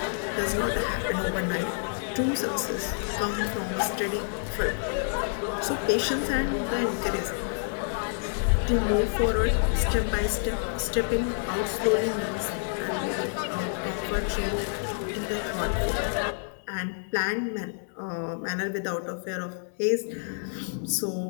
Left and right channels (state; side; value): silent; right; digital silence